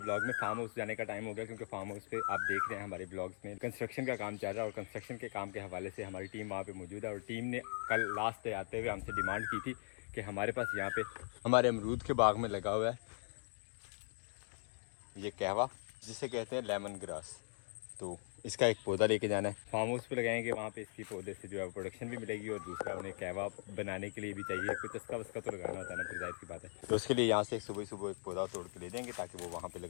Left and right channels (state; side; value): silent; right; digital silence